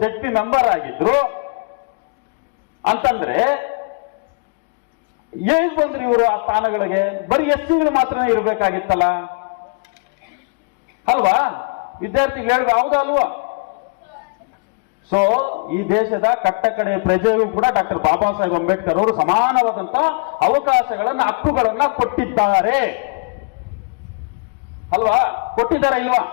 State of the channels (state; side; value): quieter; right; 33.9 dB